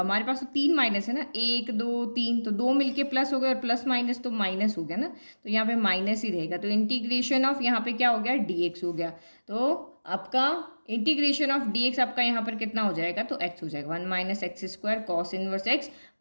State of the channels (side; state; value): both; inverted; correlation -1.00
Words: हमारे पास तो 3 माइनस है ना, 1 2 3, तो 2 मिलके प्लस हो गया और प्लस माइनस तो माइनस हो गया ना, तो यहाँ पे माइनस ही रहेगा। तो इंटीग्रेशन ऑफ यहाँ पे क्या हो गया, dx हो गया। तो आपका इंटीग्रेशन ऑफ dx आपका यहाँ पर कितना हो जाएगा, तो x हो जाएगा 1 minus x square cos inverse x